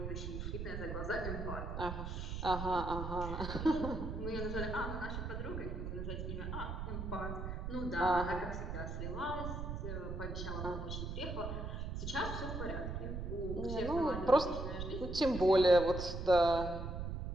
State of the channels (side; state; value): right; noise; rumble, 4 dB below the sound